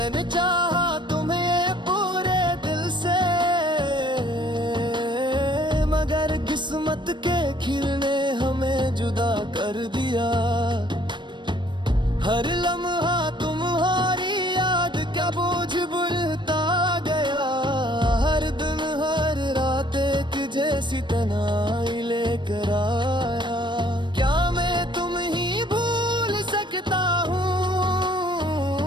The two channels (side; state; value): left; late; 0.22 ms